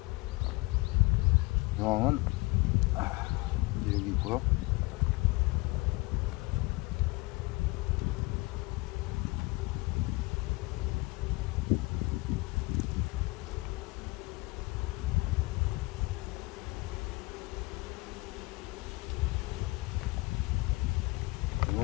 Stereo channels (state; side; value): quieter; right; 23.3 dB